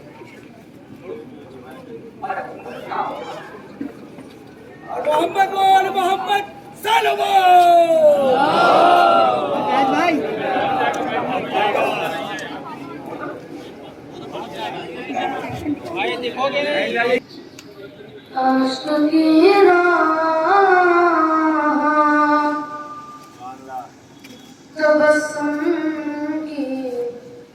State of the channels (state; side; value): identical; both; correlation 1.00